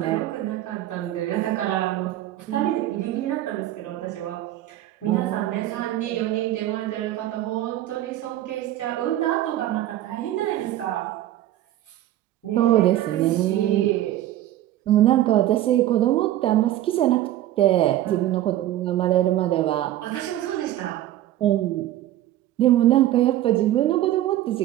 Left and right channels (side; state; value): left; quieter; 13.7 dB